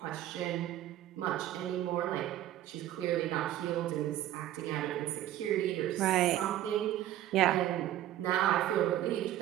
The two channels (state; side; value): quieter; left; 13.1 dB